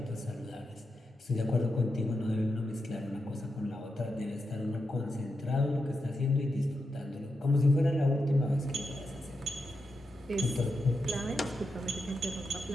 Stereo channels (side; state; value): both; normal; correlation 0.87